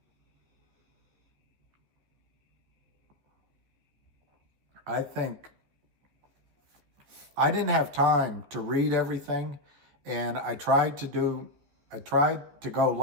I think I didn't have time to read everything, and I tried to go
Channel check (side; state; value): left; late; 14 ms